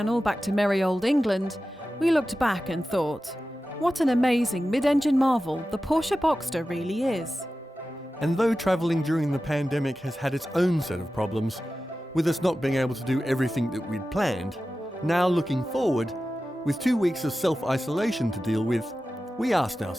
back to merry old England, we looked back and thought, what an amazing mid-engine marvel the Porsche Boxster really is. And though travelling during the pandemic has had its own set of problems, with us not being able to do everything that we'd planned, now looking forward, with 2 weeks of self-isolation to deal with, we asked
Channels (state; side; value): normal; both; correlation 0.94